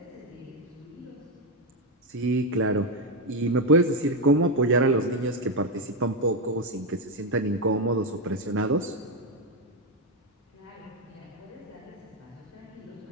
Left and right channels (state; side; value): normal; both; correlation 0.06